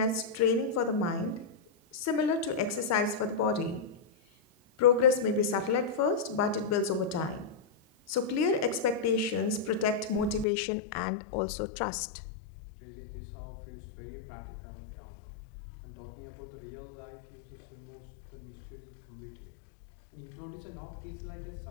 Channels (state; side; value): drops out; right; at 10.5 s